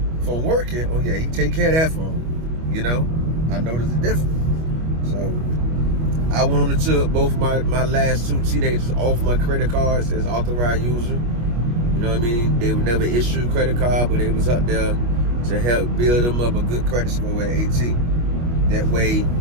working, oh yeah, he take care of that phone. You know, I noticed the difference. So I went on and took both my last two teenagers off my credit cards as authorized user. You know what I mean? They would never issue a credit card, but they was up there to help build them up a good credit score at 18. That way,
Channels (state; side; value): late; left; 25 ms